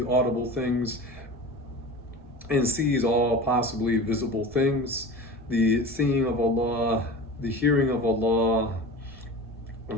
audible things and sees all possibly visible things. The seeing of Allah, the hearing of Allah,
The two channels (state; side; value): normal; both; correlation 0.33